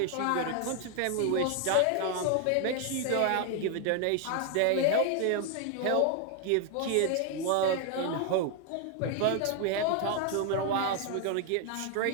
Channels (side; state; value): both; different; correlation 0.00